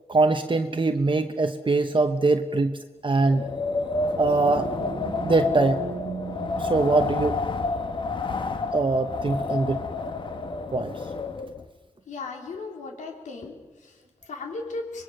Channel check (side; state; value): both; normal; correlation 0.70